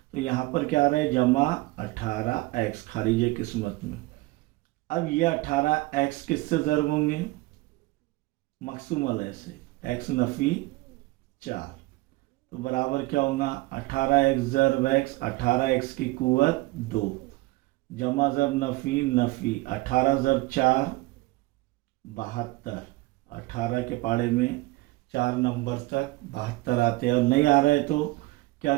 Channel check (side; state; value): left; quieter; 20.9 dB